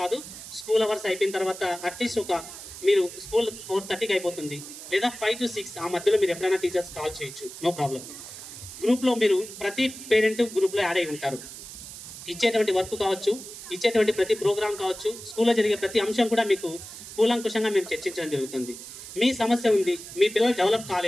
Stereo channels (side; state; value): right; noise; hiss, 13 dB below the sound